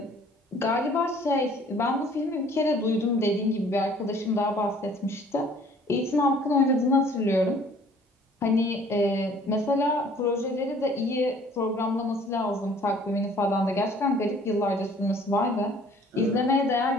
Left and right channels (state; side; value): normal; both; correlation 0.55